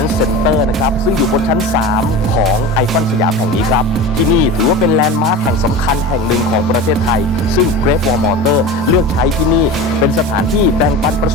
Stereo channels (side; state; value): both; normal; correlation 0.30